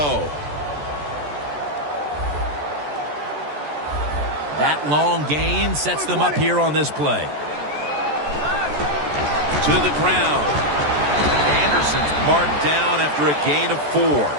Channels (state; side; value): late; left; 14 ms